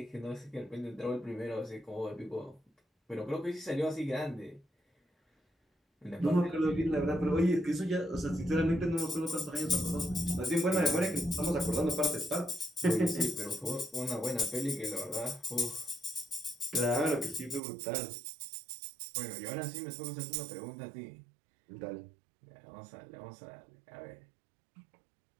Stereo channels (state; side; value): drops out; left; at 17.6 s